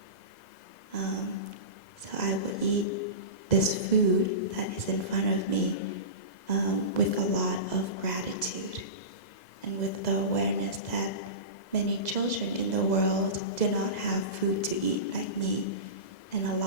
So I will eat this food that is in front of me with a lot of gratitude, and with the awareness that many children in the world do not have food to eat like me, and a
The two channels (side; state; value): right; late; 2.0 ms